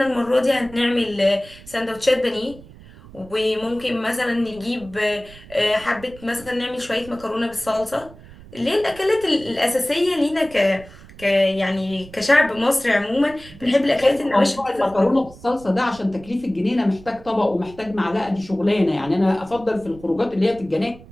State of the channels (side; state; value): right; noise; rumble, 20 dB below the sound